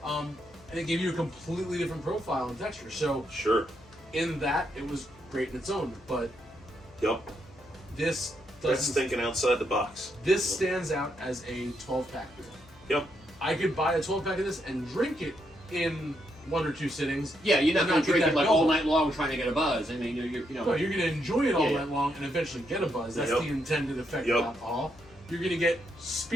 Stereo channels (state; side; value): noise; left; hum, 25 dB below the sound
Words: and it gave you a completely different profile and texture. So Sure. in that, it was great in its own. But Yep. this That's doesn't. thinking outside the box. This stands out as a 12-pack beer. Yep. I could buy a 12-pack of this and drink it in 1 or 2 sittings. Yeah, you're not and going to get drink that it like build. all night long trying to get a buzz. I mean, No, you're going to enjoy it all Yeah, night long and eventually get a buzz. That's Yep. the intended effect Yep. of alcohol. You're going to get